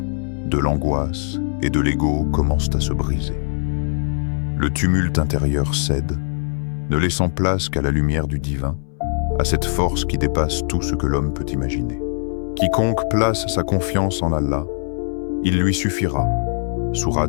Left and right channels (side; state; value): right; silent; 65 dB below the other